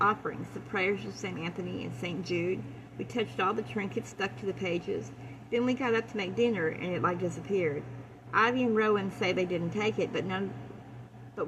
the prayers of St. Anthony and St. Jude. We touched all the trinkets stuck to the pages. Then we got up to make dinner, and it disappeared. Ivy and Rowan say they didn't take it, but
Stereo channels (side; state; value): both; identical; correlation 1.00